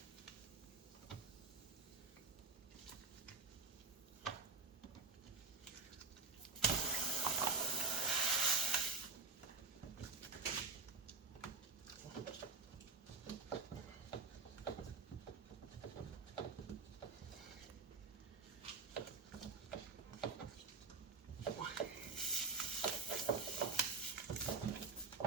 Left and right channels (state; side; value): quieter; left; 4.1 dB